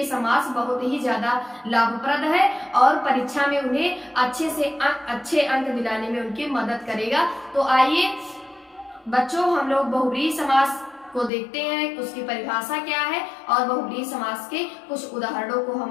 समास बहुत ही ज्यादा लाभप्रद है और परीक्षा में उन्हें अच्छे अंक दिलाने में उनकी मदद करेगा। तो आइए बच्चों, हम लोग बहुव्रीहि समास को देखते हैं, उसकी परिभाषा क्या है और बहुव्रीहि समास के कुछ उदाहरणों को हम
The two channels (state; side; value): drops out; right; at 11.3 s